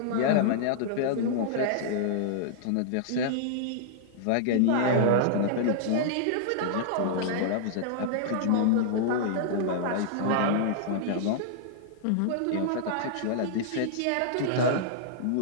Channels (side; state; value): both; different; correlation -0.01